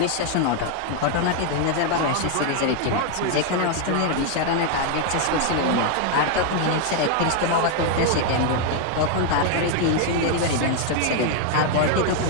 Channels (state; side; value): different; both; correlation 0.01